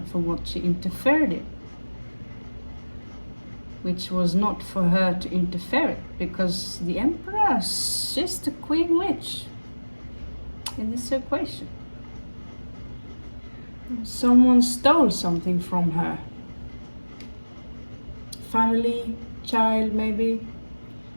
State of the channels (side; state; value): both; inverted; correlation -1.00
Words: for what she interfered in, which was not for her to interfere, because the Empress, she's the Queen Witch in this equation. Someone stole something from her. Family, child, maybe.